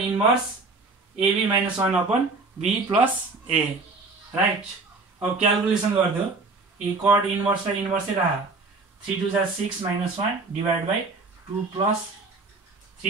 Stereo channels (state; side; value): quieter; left; 3.8 dB